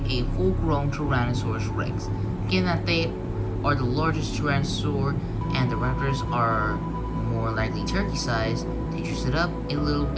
a full-grown Tyrannosaurus Rex. Given that they are the largest tyrannosaur and the raptors are more likely turkey-sized, to juice it up a little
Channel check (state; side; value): identical; both; correlation 1.00